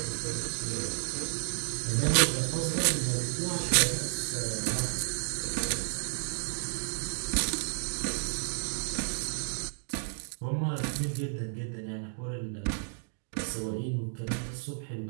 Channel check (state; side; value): silent; left; digital silence